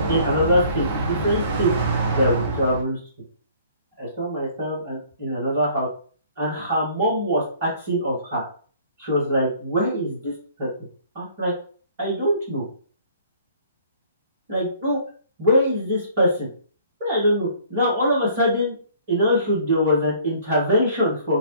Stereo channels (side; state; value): both; inverted; correlation -0.56